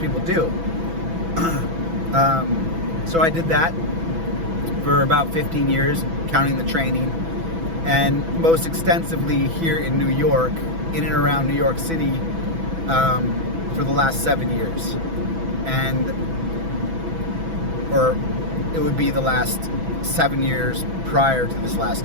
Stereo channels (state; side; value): late; left; 6.1 ms